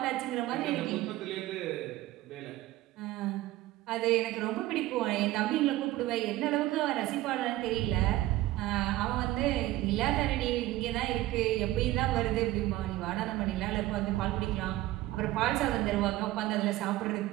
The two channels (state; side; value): quieter; left; 16.5 dB